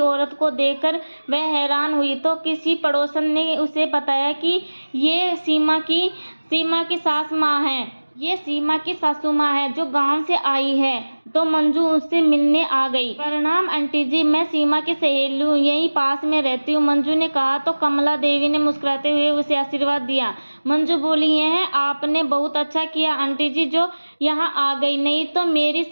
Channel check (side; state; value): both; inverted; correlation -1.00